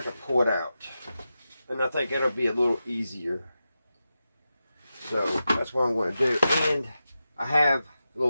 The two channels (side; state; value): both; inverted; correlation -0.91